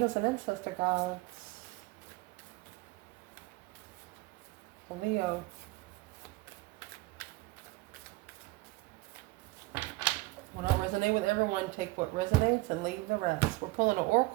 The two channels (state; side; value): quieter; left; 22.3 dB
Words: and ancestor gods. For Leo. Will not resonate with everyone. Take what resonates and leave the rest. We're pulling an